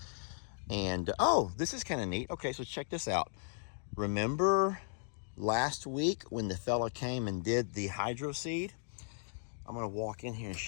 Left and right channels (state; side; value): silent; right; digital silence